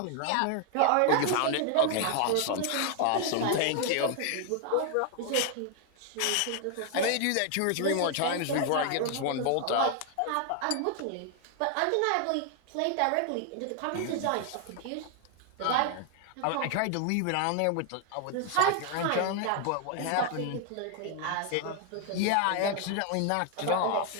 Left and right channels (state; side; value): different; both; correlation 0.00